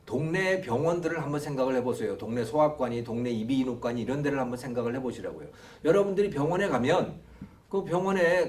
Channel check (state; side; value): identical; both; correlation 1.00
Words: 동네 병원들을 한번 생각을 해보세요. 동네 소아과니, 동네 이비인후과니 이런 데를 한번 생각을 해보시라고요. 여러분들이 병원에 가면 그 병원에